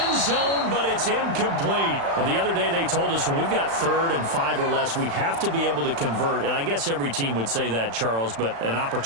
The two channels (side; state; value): left; late; 35 ms